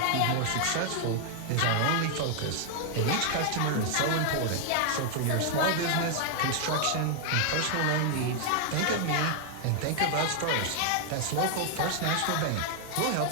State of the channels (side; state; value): both; different; correlation 0.00